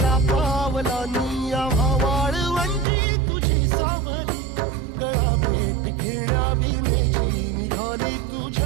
पावलानी आव्हा वाळवंटी तुझी सावली गळा भेट घेण्या भीमेची निघाली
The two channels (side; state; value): left; drops out; at 2.9 s